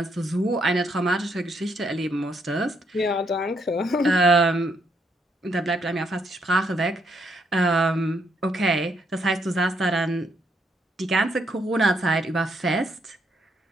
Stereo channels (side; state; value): both; normal; correlation 0.74